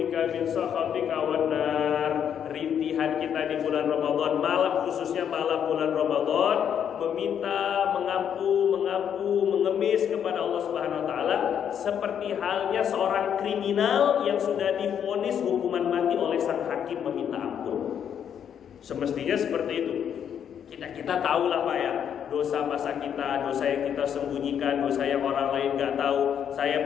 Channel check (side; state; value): right; quieter; 8.6 dB